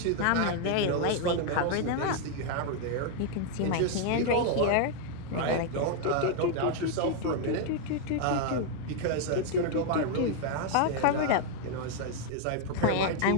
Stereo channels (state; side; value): different; both; correlation 0.00